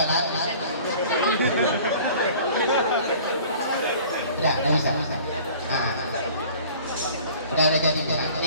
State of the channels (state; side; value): inverted; both; correlation -0.48